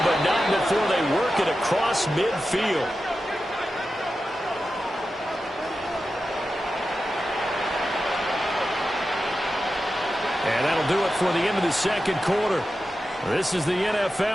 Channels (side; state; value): both; normal; correlation 0.92